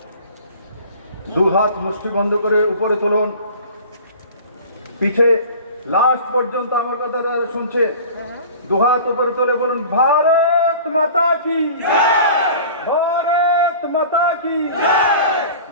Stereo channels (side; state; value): both; inverted; correlation -0.41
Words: দু হাত মুষ্টি বন্ধ করে উপরে তুলুন, পিছে লাস্ট পর্যন্ত আমার কথা তারা শুনছে, দু হাত উপরে তুলে বলুন, ভারত মাতা কি জয়, ভারত মাতা কি জয়,